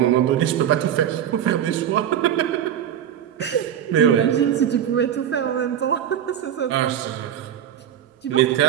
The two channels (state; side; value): quieter; left; 9.9 dB